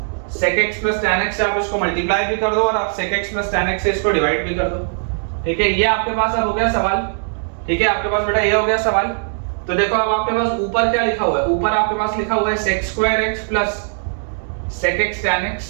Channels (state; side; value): silent; left; digital silence